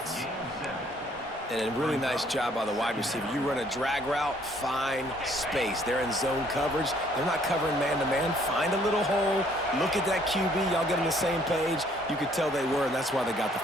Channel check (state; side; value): normal; both; correlation 0.63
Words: And a really nice job by the wide receiver. You run a drag route, find space. They're in zone coverage. They're not covering man-to-man. Find a little hole. Look at that QB. Y'all get on the same page. You could tell they were, and that's why they got the